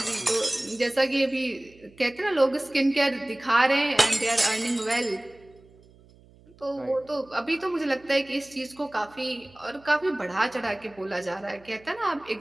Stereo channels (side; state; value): right; noise; hum, 27 dB below the sound